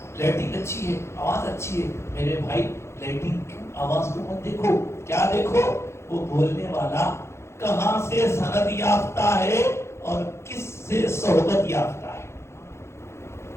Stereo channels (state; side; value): late; right; 0.13 ms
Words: لائٹنگ اچھی ہے، آواز اچھی ہے. میرے بھائی لائٹنگ آواز کو مت دیکھو، کیا دیکھو وہ بولنے والا کہاں سے سند یافتہ ہے اور کس سے صحبت یافتہ ہے.